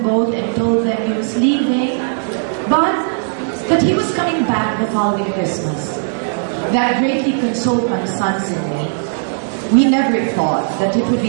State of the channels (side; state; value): left; silent; 58 dB below the other